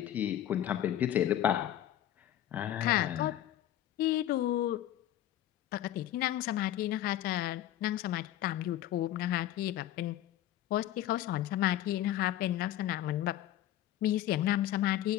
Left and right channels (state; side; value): quieter; right; 12.6 dB